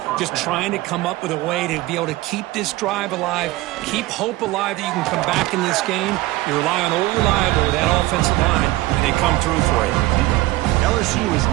just trying to come up with a way to be able to keep this drive alive, keep hope alive that you can come back in this game. You rely on old reliable with that offensive line, and they come through for you. LSU is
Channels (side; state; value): left; quieter; 18.5 dB